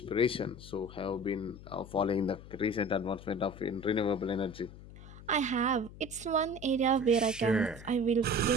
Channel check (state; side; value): noise; left; hum, 16 dB below the sound